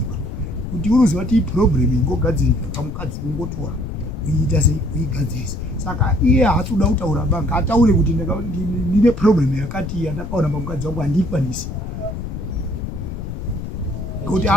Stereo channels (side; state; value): left; noise; rumble, 6 dB below the sound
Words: Kuti unoziva kuti problem ingogadzirika kamukadzi ungotora uiita sei uigadzirisa. Saka iye haasi kuda kutaura ba, ngataure kuti ndine problem yakati yandakaona pamukadzi wangu handikwanisi. Ngekuti